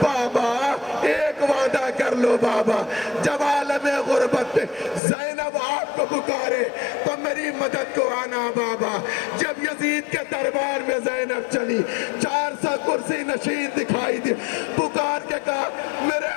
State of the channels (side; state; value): right; drops out; at 5.0 s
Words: بابا ایک وعدہ کر لو بابا, جب عالم غربت پہ زینب آپ کو پکارے تو میری مدد کو آنا بابا. جب یزید کے دربار میں زینب چلی 400 کرسی نشین دکھائی دی, پکار کے کہا میرے